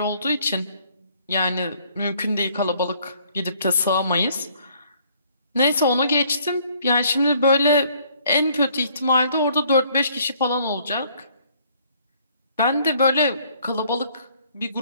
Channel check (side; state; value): both; inverted; correlation -0.63